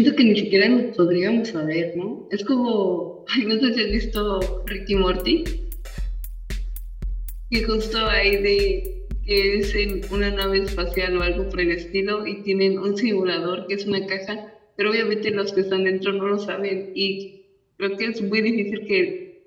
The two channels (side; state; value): both; identical; correlation 1.00